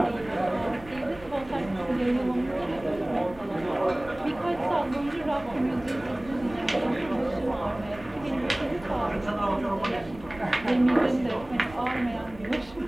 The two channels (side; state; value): right; noise; rumble, 19 dB below the sound